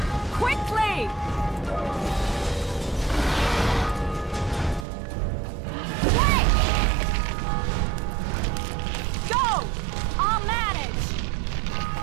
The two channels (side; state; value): left; drops out; at 4.9 s